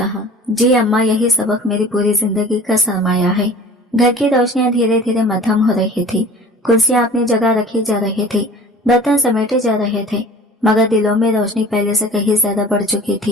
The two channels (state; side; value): normal; both; correlation 0.43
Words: जी अम्मा, यही सबक मेरी पूरी जिंदगी का सरमाया है। घर की रोशनियां धीरे धीरे मध्यम हो रही थी, कुर्सियां अपनी जगह रखी जा रही थी, बर्तन समेटे जा रहे थे, मगर दिलों में रोशनी पहले से कहीं ज्यादा बढ़ चुकी